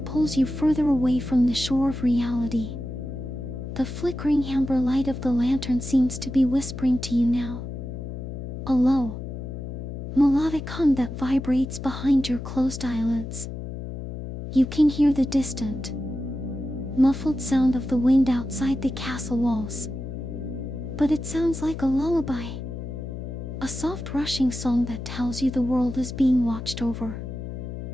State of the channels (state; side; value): noise; left; hum, 7 dB below the sound